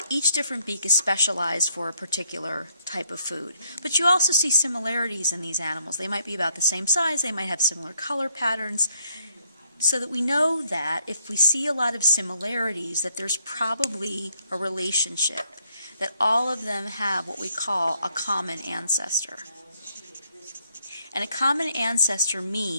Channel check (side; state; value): both; inverted; correlation -0.70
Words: each different beak is specialized for a particular type of food. But you also see similarities in these animals. They might be about the same size, they might have similar color patterns, so that we know that if we see a lot of similarities, that there's probably a relationship, that all of them have what we call a common ancestor. And a common ancestor